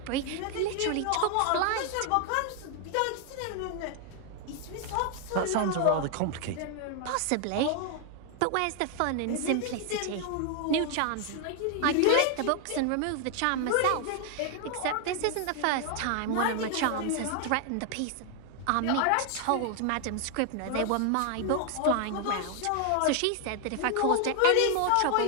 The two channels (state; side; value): different; both; correlation 0.00